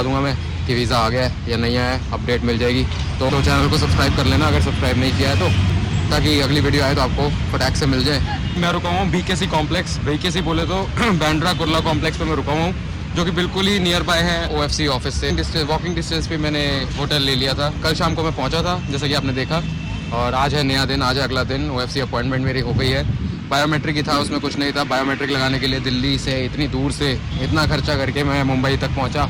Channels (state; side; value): identical; both; correlation 1.00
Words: दूंगा मैं कि वीज़ा आ गया है या नहीं आया है, अपडेट मिल जाएगी। तो चैनल को सब्सक्राइब कर लेना अगर सब्सक्राइब नहीं किया है तो, ताकि अगली वीडियो आए तो आपको फटाक से मिल जाए। मैं रुका हूँ BKC कॉम्प्लेक्स। BKC बोले तो बांद्रा कुर्ला कॉम्प्लेक्स पे मैं रुका हूँ, जो कि बिल्कुल ही नियर बाय है OFC ऑफिस से। वॉकिंग डिस्टेंस पे मैंने होटल ले लिया था। कल शाम को मैं पहुँचा था, जैसा कि आपने देखा, और आज है नया दिन, आज है अगला दिन। OFC अपॉइंटमेंट मेरी हो गई है। बायोमेट्रिक ही था, उसमें कुछ नहीं था। बायोमेट्रिक लगाने के लिए दिल्ली से इतनी दूर से इतना खर्चा करके मैं मुंबई तक पहुँचा,